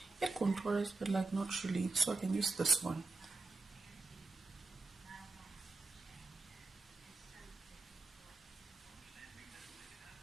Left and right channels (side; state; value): left; quieter; 3.5 dB